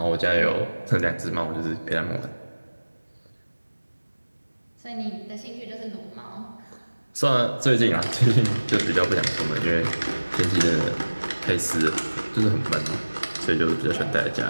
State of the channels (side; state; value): both; inverted; correlation -1.00